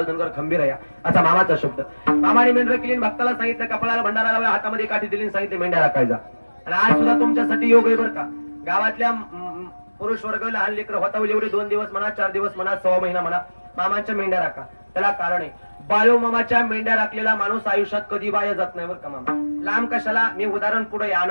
खंबीर आहे असा मामाचा शब्द. मामाने मेंढर केली, भक्ताला सांगितलं, कपाळाला भंडारा लावला, हातामध्ये काठी दिली, सांगितले मेंढ्या राखायचा. आणि आज सुद्धा तुमच्यासाठी योग आहे बरं का. गावातल्या पुरुष वर्ग, लहान लेकरं होतावली एवढे 2 दिवस म्हणा, 4 दिवस म्हणा, 1.25 महिना म्हणा, मामांच्या मेंढ्या राखा. त्याला कारण आहे, बाळू मामाच्या मेंढ्या राखलेला माणूस आयुष्यात कधी बाया जात नाही बरं का. मामा लांब कशाला, मी उदाहरण पुढे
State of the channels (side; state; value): both; inverted; correlation -1.00